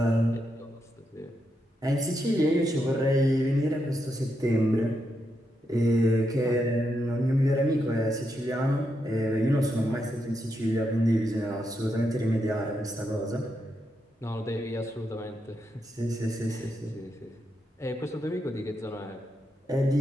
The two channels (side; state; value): both; normal; correlation 0.82